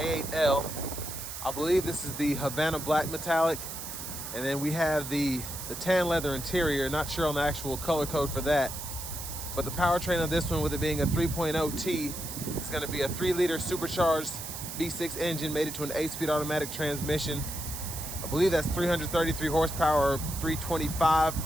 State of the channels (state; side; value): noise; right; hiss, 8 dB below the sound